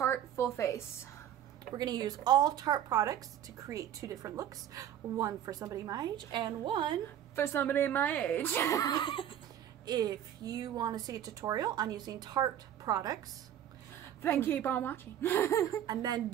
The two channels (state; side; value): quieter; left; 10.7 dB